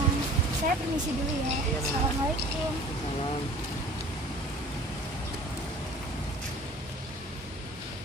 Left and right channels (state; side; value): normal; both; correlation 0.46